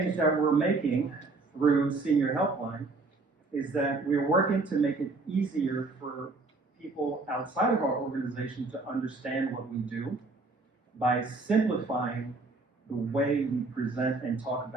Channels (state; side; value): quieter; left; 3.6 dB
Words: that we're making through Senior Helpline is that we're working to make it easier for people outside of our organization to understand what we do by simplifying the way we present and talk